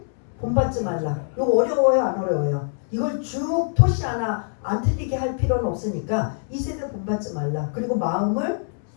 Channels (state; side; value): silent; right; 63 dB below the other